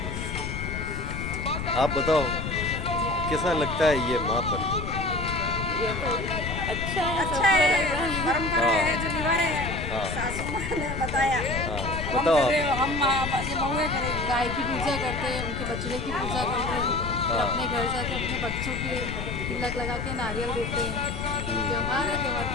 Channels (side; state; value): left; noise; rumble, 5 dB below the sound